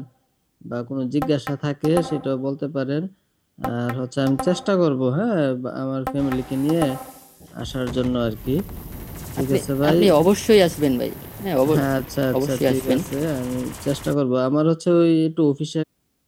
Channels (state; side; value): identical; both; correlation 1.00